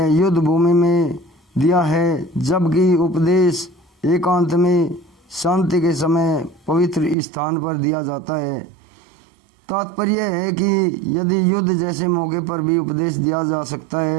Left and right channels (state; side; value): drops out; left; at 7.2 s